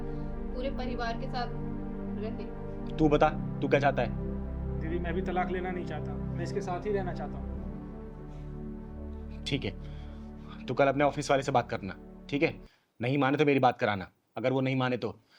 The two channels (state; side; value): identical; both; correlation 1.00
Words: पूरे परिवार के साथ रहे। तू बता, तू क्या चाहता है? दीदी मैं भी तलाक लेना नहीं चाहता, मैं इसके साथ ही रहना चाहता हूँ। ठीक है, तू कल अपने ऑफिस वाले से बात करना, ठीक है? नहीं माने तो मेरी बात कराना, अगर वो नहीं माने तो